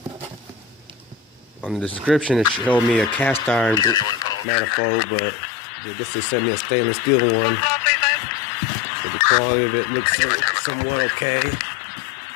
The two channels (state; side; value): drops out; right; at 4.5 s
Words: On the description it showed me a cast iron manifold, but this just sent me a stainless steel one. So the quality of it looks somewhat okay.